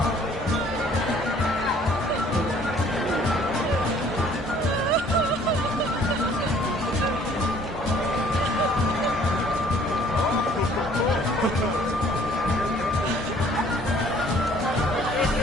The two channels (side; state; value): both; normal; correlation 0.57